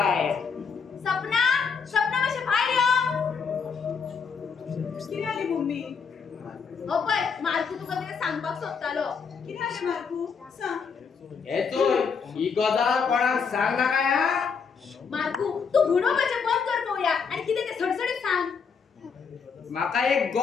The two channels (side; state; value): right; quieter; 5.9 dB